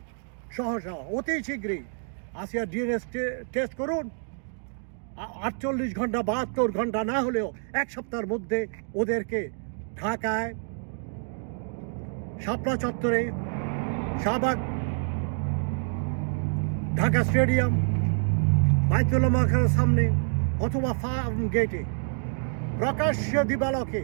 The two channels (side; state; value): left; silent; 60 dB below the other